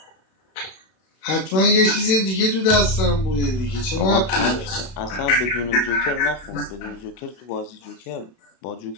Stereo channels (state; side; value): late; right; 32 ms